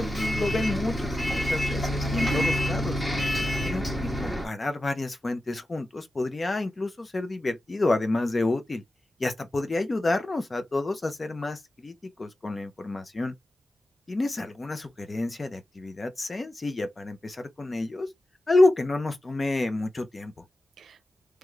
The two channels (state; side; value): normal; both; correlation 0.93